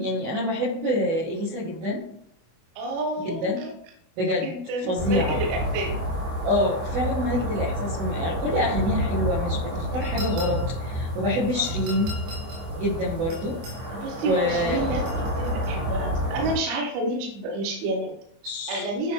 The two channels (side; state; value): left; late; 24 ms